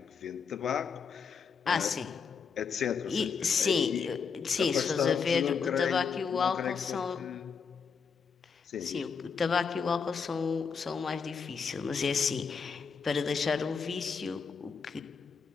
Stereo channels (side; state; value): right; quieter; 5.9 dB